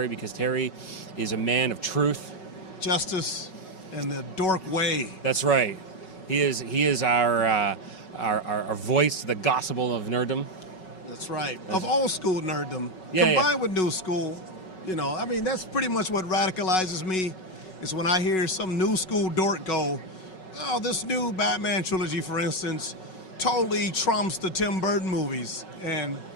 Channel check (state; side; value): late; right; 5.4 ms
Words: because Terry is a man of truth, justice, and the dork way. That's right. He is our voice to the gospel of nerddom. That's right. Of old school nerddom, Yeah, combined with new school. I mean, that's pretty much what radicalizes me. Is when I hear some new school dork go, "Oh, this new Batman trilogy, for instance, totally trumps the Tim Burton movies," and